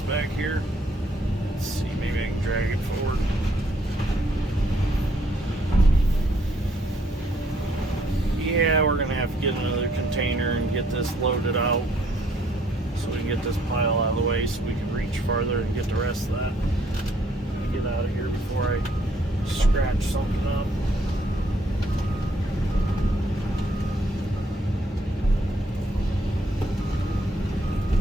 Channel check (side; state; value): both; normal; correlation 0.67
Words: back here. Let's see, maybe I can drag it forward. Yeah, we're gonna have to get another container and get this loaded out, so we can get this pile out of the way so we can reach farther and get the rest of that. Get out of here before I scratch something up.